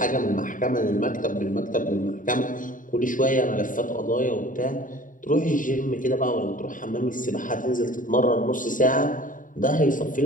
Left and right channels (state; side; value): late; right; 0.38 ms